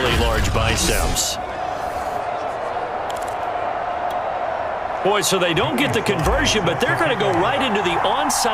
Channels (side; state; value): both; identical; correlation 1.00